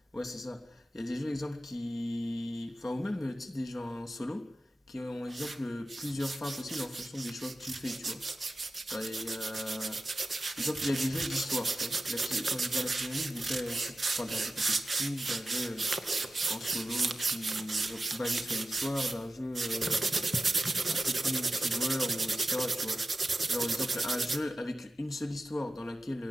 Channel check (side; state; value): both; normal; correlation 0.94